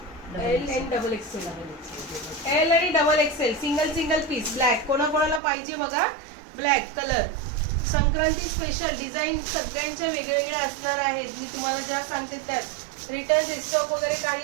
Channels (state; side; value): drops out; left; at 5.4 s